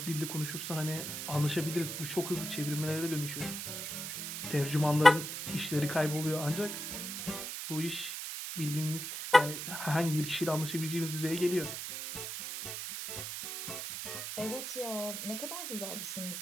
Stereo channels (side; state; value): right; noise; hiss, 6 dB below the sound